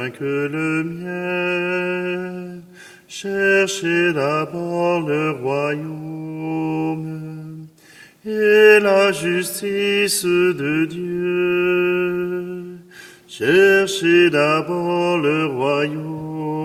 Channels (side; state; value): both; identical; correlation 1.00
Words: que le miel. Cherchez d'abord le royaume et la justice de Dieu. Cherchez d'abord le